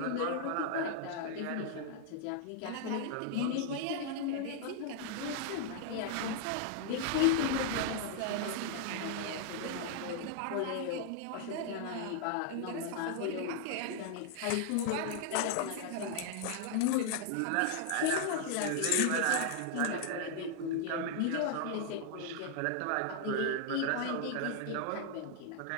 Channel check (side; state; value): both; different; correlation -0.01